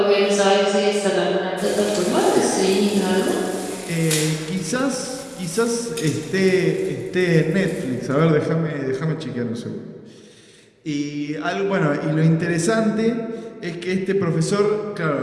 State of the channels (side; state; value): both; identical; correlation 1.00